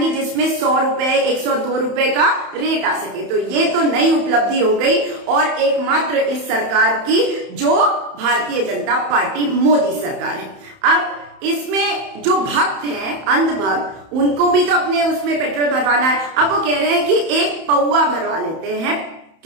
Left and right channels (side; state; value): left; late; 31 ms